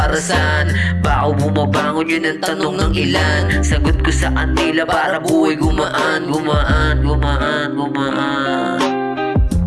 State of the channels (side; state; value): both; identical; correlation 1.00